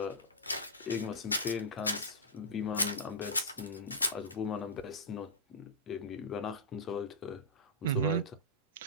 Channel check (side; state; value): both; normal; correlation -0.14